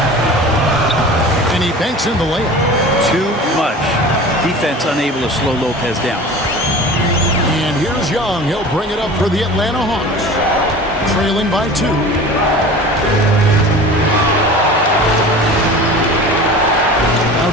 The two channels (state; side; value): normal; both; correlation 0.38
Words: And he banks in the layup. Too much. Defense unable to slow Lopez down. And here's Young. He'll bring it up for the Atlanta Hawks. Trailing by 2. Now